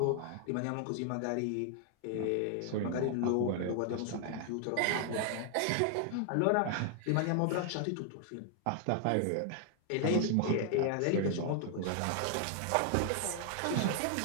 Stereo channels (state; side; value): different; both; correlation 0.00